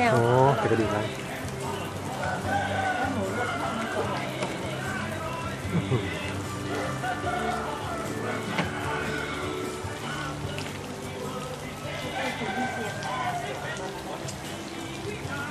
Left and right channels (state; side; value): identical; both; correlation 1.00